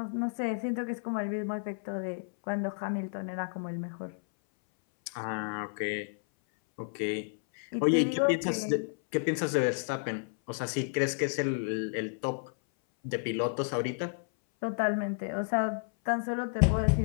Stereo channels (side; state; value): right; silent; 57 dB below the other